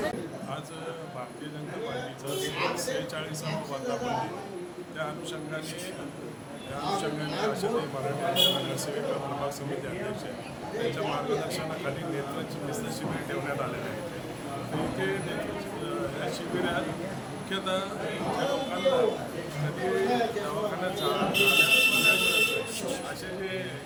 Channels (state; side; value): identical; both; correlation 1.00